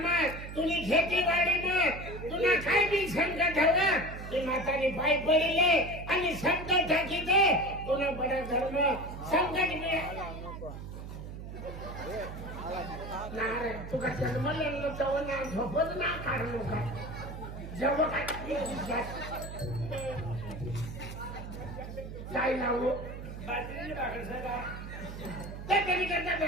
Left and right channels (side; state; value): right; noise; hum, 10 dB below the sound